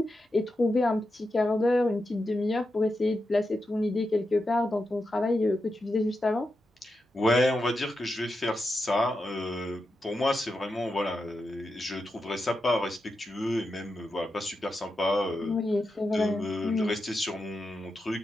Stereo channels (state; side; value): normal; both; correlation 0.88